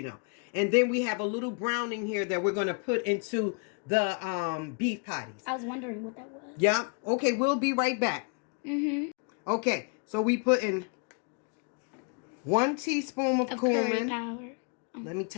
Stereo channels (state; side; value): quieter; right; 36.5 dB